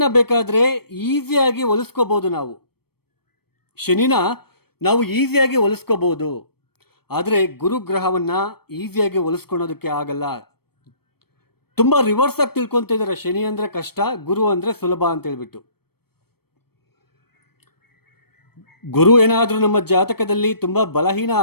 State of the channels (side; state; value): right; late; 0.96 ms